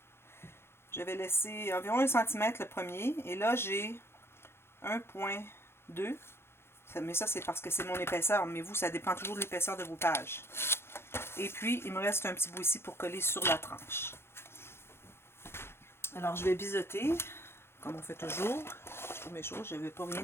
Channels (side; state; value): right; late; 0.12 ms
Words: j'avais laissé environ 1 cm le premier. Et là, j'ai 1,2. Mais ça, c'est parce que c'est mon épaisseur. Mais vous, ça dépend toujours de l'épaisseur de vos pages. Et puis, il me reste un petit bout ici pour coller sur la tranche. Alors, je vais biseauter, comme on fait toujours. Je trouve mes choses. Je n'avais pas rien